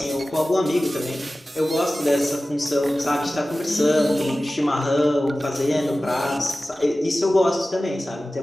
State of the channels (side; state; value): both; normal; correlation 0.96